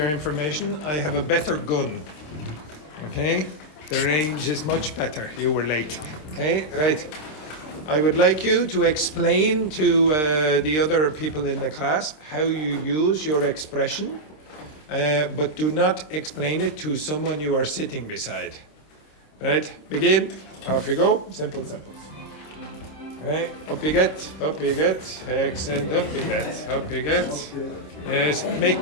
information, I have a better gun. Okay? The range is much better. You were late. Okay? Right. I would like you to explain to the other people in the class how you use your expression, but do not explain it to someone you are sitting beside. Right? Begin. Off you go. Simple sentence. Okay, up you get, excellent, up you get. Yes,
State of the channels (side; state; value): right; late; 26 ms